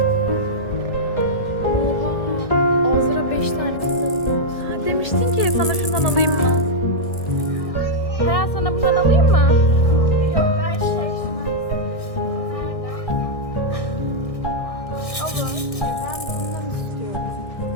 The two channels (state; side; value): late; right; 1.6 ms